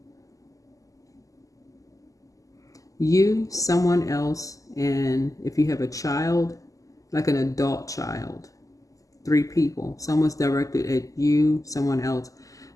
You, someone else, and if you have a child, like an adult child, 3 people. Someone's directed at you, someone else.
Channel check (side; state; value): right; late; 0.16 ms